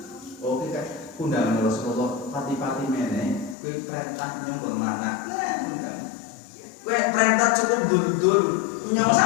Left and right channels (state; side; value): drops out; right; at 3.6 s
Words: oke kayak undangan Rasulullah pati-pati mene kowe perintah nyong kon mana undang kowe perintah cukup dul nyong